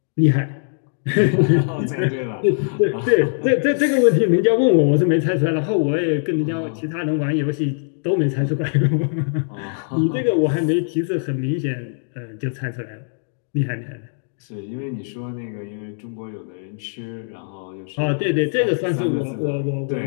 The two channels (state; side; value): silent; right; digital silence